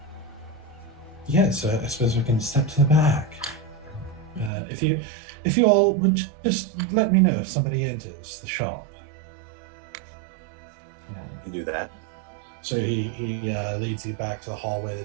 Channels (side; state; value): left; drops out; at 4.5 s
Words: Yes, I suppose we can step to the back. If you all would just let me know if somebody enters the shop. You do that. So he leads you back to the hallway